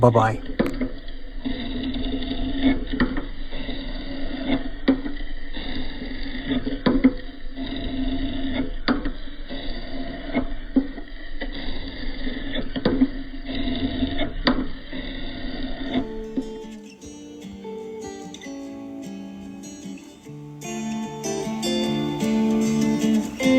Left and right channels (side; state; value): both; identical; correlation 1.00